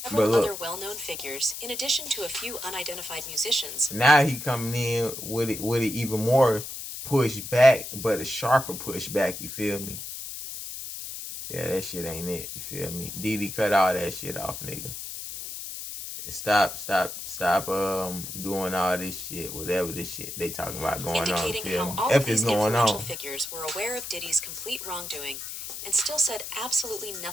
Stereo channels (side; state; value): left; noise; hiss, 8 dB below the sound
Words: Several other well-known figures, in addition to a few unidentified musicians. Now he coming in with it even more push back, but a sharper push back. You feel me? Yeah, that shit ain't it. You feel me? Diddy cut all that shit off, nigga. Stop doing all this shit, whatever this shit they talking about going on. Indicating how all F of these is going influential on. figures were aware of Diddy's complete wrongdoing and still said absolutely